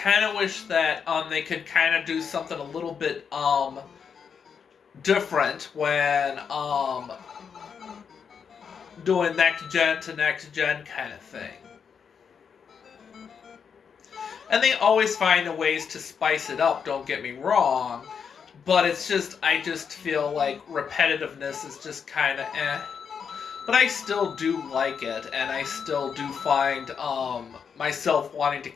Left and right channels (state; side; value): quieter; right; 6.7 dB